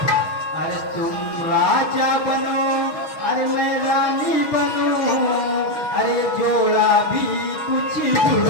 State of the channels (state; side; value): late; right; 6.3 ms